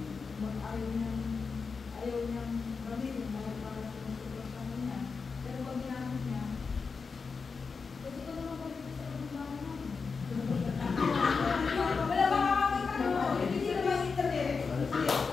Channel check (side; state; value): right; quieter; 5.0 dB